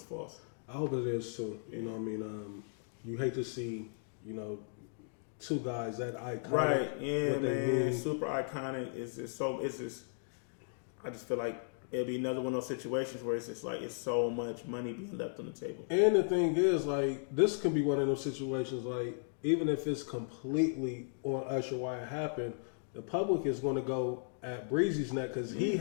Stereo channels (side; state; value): right; silent; digital silence